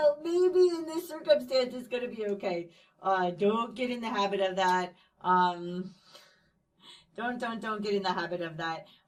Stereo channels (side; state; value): both; identical; correlation 1.00